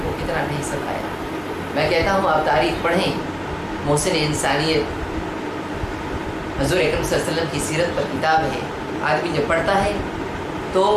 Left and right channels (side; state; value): both; identical; correlation 1.00